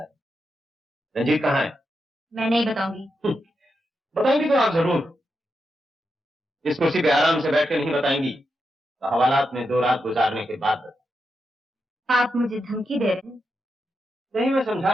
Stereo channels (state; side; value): normal; both; correlation 0.86